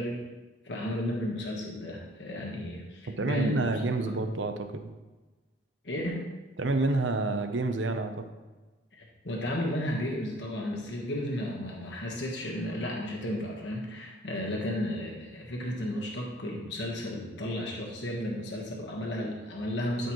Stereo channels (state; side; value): normal; both; correlation 0.54